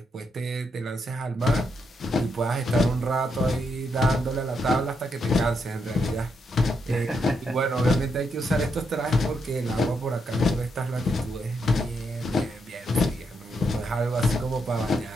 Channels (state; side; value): normal; both; correlation 0.80